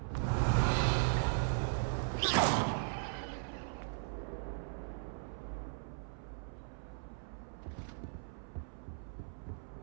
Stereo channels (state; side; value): silent; left; 52 dB below the other